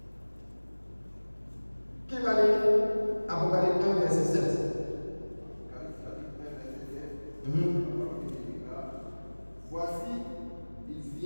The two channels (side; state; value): both; inverted; correlation -1.00